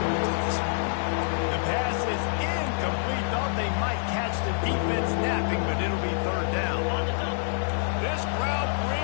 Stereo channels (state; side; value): silent; right; digital silence